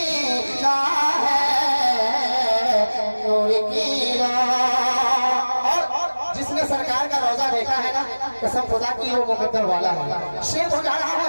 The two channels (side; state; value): both; inverted; correlation -1.00